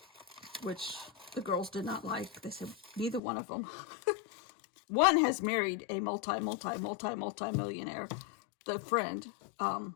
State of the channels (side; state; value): right; drops out; at 3.2 s